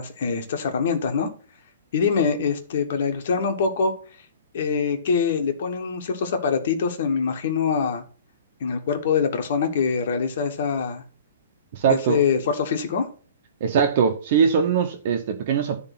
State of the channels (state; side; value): inverted; both; correlation -0.46